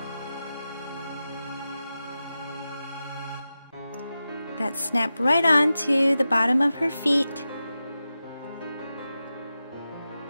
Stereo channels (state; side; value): inverted; both; correlation -0.92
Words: That snap right onto the bottom of her feet.